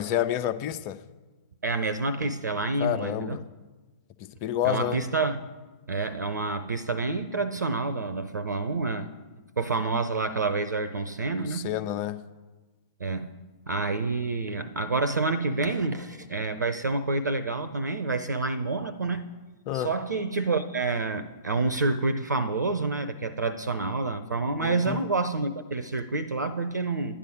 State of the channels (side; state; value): both; inverted; correlation -0.42